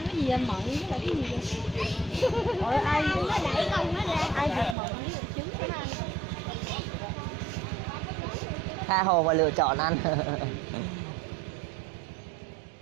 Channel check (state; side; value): drops out; left; at 4.8 s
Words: anh mận với lại cái gì vậy? Ôi ai nó đẩy con nó ra, ai giật mận với lại trứng nó ăn. Tha hồ mà lựa chọn ăn.